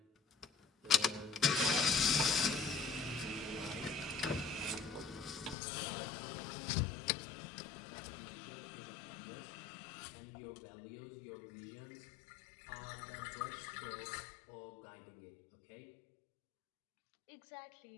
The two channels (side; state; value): right; drops out; at 5.6 s